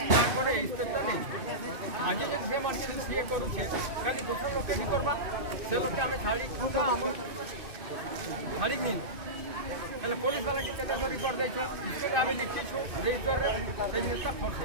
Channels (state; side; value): late; left; 2.5 ms